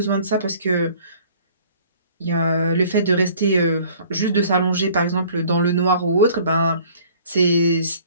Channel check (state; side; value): inverted; both; correlation -0.53